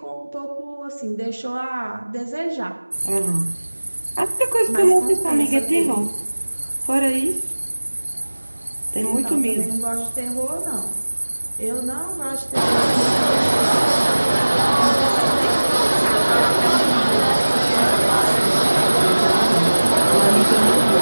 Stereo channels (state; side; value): inverted; both; correlation -1.00